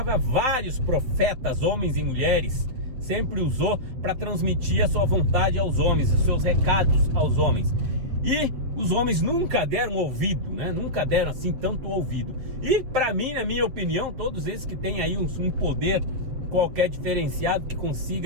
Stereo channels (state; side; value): late; left; 7.9 ms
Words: vários profetas, homens e mulheres, sempre usou para transmitir a sua vontade aos homens, os seus recados aos homens. E os homens nunca deram ouvido, né? Nunca deram assim tanto ouvido. E para mim, na minha opinião, todos esses que têm aí um poder qualquer diferenciado, que